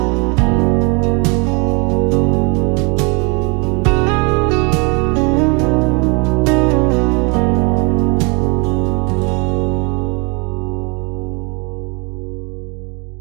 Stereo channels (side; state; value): left; quieter; 31.7 dB